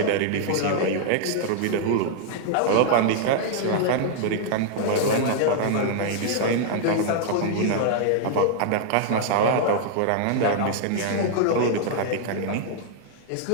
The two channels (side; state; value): both; different; correlation -0.01